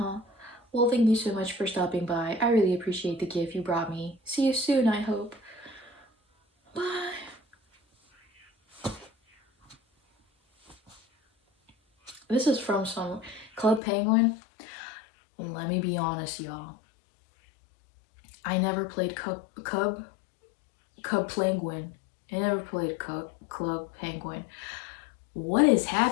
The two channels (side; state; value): right; drops out; at 13.8 s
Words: Well, thank you so much for stopping by. I really appreciate the gift you brought me. See you soon, I hope. Bye. This is from some Club Penguin. Let me be honest, y'all. I never played Cub Penguin. I never played Club Penguin. What is